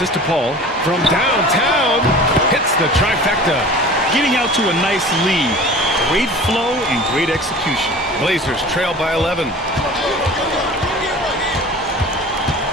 to Paul from downtown, hits the trifecta. Getting out to a nice lead. Great flow and great execution. Blazers trail by 11.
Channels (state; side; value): normal; both; correlation 0.41